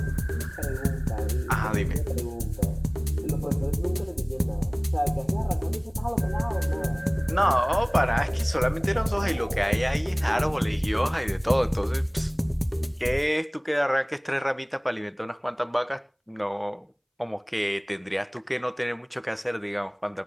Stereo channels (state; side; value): identical; both; correlation 1.00